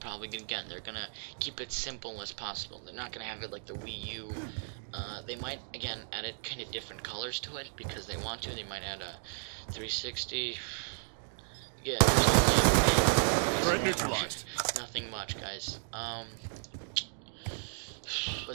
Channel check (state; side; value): silent; left; digital silence